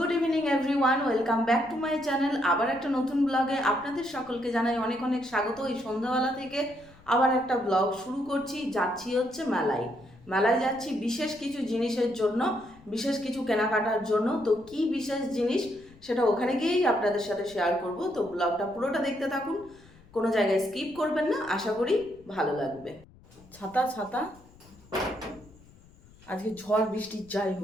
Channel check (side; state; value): left; noise; rumble, 25 dB below the sound